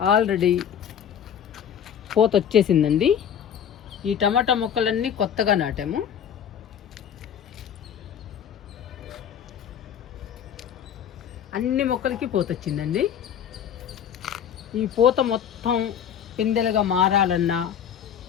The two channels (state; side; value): quieter; right; 8.8 dB